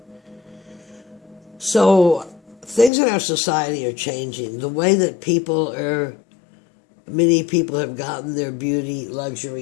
So things in our society are changing. The way that many people have gotten their beauty,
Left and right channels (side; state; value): right; drops out; at 2.9 s